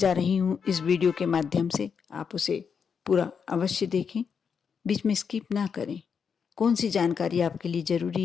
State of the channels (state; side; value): quieter; right; 6.5 dB